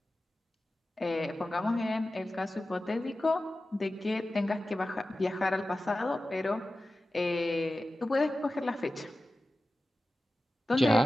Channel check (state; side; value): normal; both; correlation 0.94